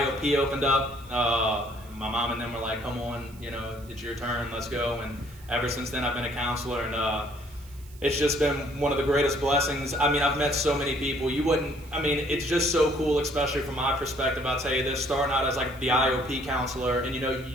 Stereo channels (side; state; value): right; noise; hiss, 24 dB below the sound